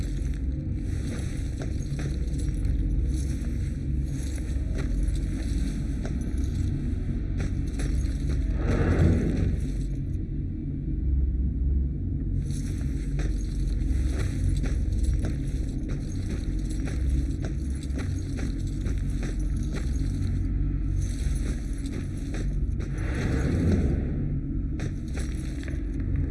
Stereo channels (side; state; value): both; identical; correlation 1.00